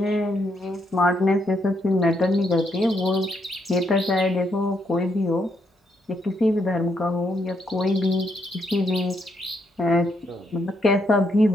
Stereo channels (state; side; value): normal; both; correlation 0.76